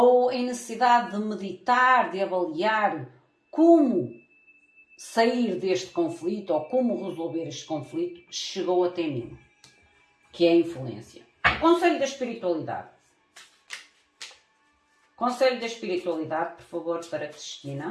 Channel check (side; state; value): both; identical; correlation 1.00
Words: em necessidade de meditar, de avaliar como sair deste conflito ou como resolver este conflito, chegou até mim, que é a influência. O conselho da espiritualidade. Conselho da espiritualidade, por favor, para